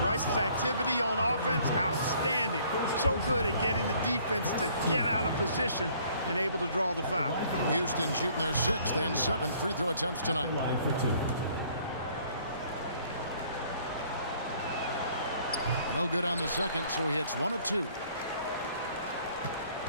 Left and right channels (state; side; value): inverted; both; correlation -0.59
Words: Rice's activity on offense, outstanding. So good at getting the defense to get out of position and able to draw the foul. Houston shooting their 6th and 7th free throw attempts tonight. No good on the second, so he hits 1 of 2.